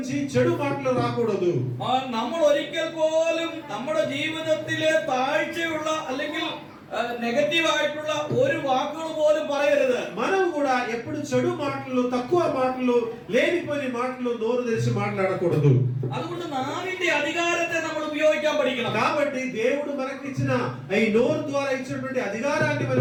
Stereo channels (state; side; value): identical; both; correlation 1.00